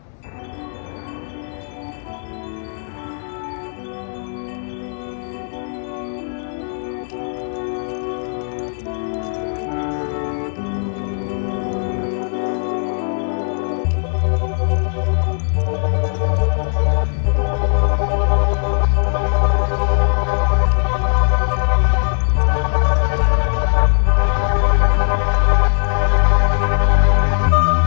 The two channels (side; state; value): right; silent; digital silence